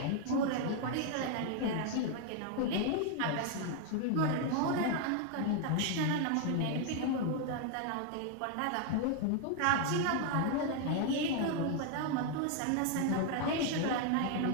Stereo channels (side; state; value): both; different; correlation 0.00